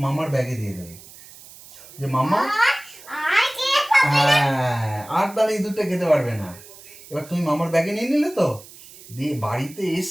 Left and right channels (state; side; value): noise; right; hiss, 20 dB below the sound